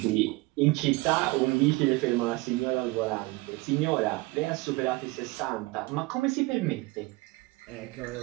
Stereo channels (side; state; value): left; quieter; 23.0 dB